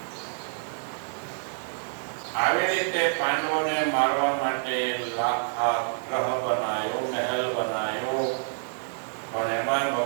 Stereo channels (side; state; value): left; silent; digital silence